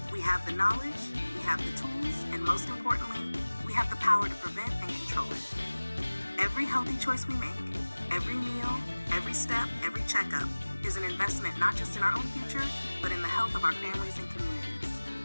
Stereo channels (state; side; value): inverted; both; correlation -1.00